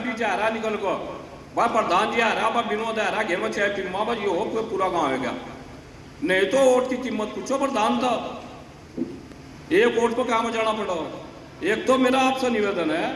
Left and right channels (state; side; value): identical; both; correlation 1.00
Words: जा रहा निकल को, भाई प्रधान जी आ रहा, भाई विनोद आ रहा, घेर में 6 फिल्मा, भाई ये हो कोई पूरा गाँव है क्या? नहीं तो वोट की कीमत पूछो प्रधान था, एक वोट पर काम जाना पड़ा। एक तो मेरा आपसे निवेदन है,